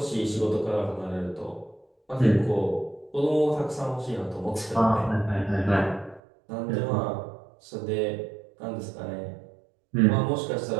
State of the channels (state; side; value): drops out; left; at 6.2 s